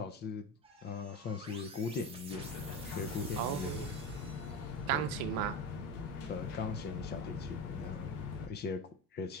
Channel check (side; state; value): both; normal; correlation 0.23